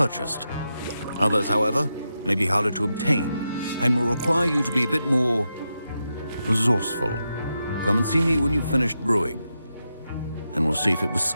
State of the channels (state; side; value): inverted; both; correlation -0.87